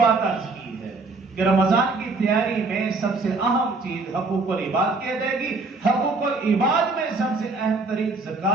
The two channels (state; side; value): quieter; left; 3.7 dB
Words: عرض کی ہے کہ رمضان کی تیاری میں سب سے اہم چیز حقوق العباد کی ادائیگی، حقوق العباد میں سب سے اہم ترین